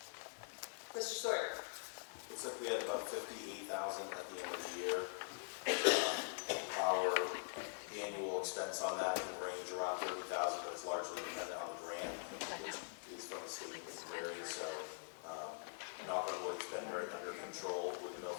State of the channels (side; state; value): right; silent; digital silence